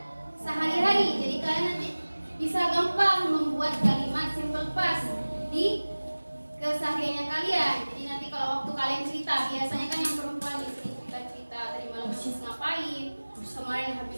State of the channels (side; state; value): both; inverted; correlation -1.00